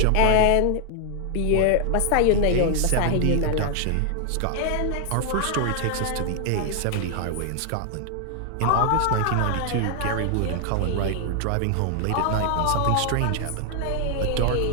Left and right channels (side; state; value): both; different; correlation 0.00